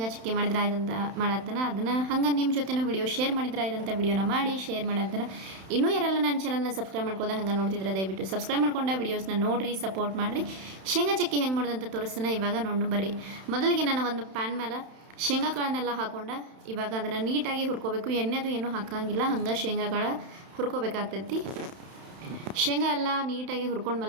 ಚಕ್ಕಿ ಮಾಡಿದ್ರೆ ಆಯ್ತಂತ ಮಾಡತ್ತನ. ಅದನ್ನು ಹಂಗೆ ನಿಮ್ಮ ಜೊತೆನೂ ವಿಡಿಯೋ ಶೇರ್ ಮಾಡಿದ್ರೆ ಆಯ್ತಂತ ವಿಡಿಯೋನ ಮಾಡಿ ಶೇರ್ ಮಾಡತ್ತನ. ಇನ್ನೂ ಯಾರೆಲ್ಲ ನನ್ನ ಚಾನಲ್ನ ಸಬ್ಸ್ಕ್ರೈಬ್ ಮಾಡ್ಕೋದ ಹಂಗೆ ನೋಡ್ತಿದ್ರೆ ದಯವಿಟ್ಟು ಸಬ್ಸ್ಕ್ರೈಬ್ ಮಾಡ್ಕೊಂಡ ವಿಡಿಯೋಸ್ನ ನೋಡಿರಿ, ಸಪೋರ್ಟ್ ಮಾಡಿರಿ. ಶೇಂಗಾ ಚಕ್ಕಿ ಹೆಂಗೆ ಮಾಡೋದಂತ ತೋರಿಸ್ತಾನೆ. ಇವಾಗ ನೋಡು ಬರ್ರಿ. ಮೊದಲಿಗೆ ನಾನು ಒಂದು ಪ್ಯಾನ್ ಮೇಲೆ ಶೇಂಗಾ ಕಾಳನ್ನೆಲ್ಲ ಹಾಕ್ಕೊಂಡು ಇವಾಗ ಅದನ್ನು ನೀಟಾಗಿ ಹುರ್ಕೋಬೇಕು. ಎಣ್ಣೆದು ಏನೂ ಹಾಕೋಂಗಿಲ್ಲ, ಹಂಗೆ ಶೇಂಗಾ ಕಾಳು ಹುರ್ಕೋಬೇಕಾಗ್ತೈತಿ. ಶೇಂಗಾ ಎಲ್ಲ ನೀಟಾಗಿ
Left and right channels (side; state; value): left; late; 31 ms